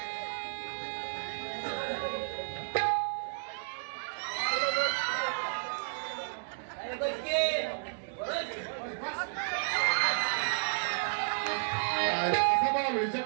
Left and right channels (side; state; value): left; silent; digital silence